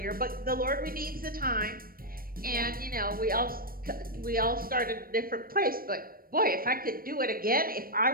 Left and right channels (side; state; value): left; late; 0.42 ms